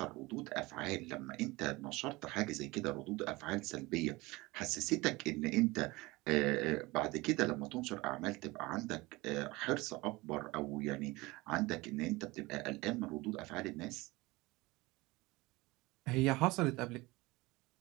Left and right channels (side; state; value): left; quieter; 21.9 dB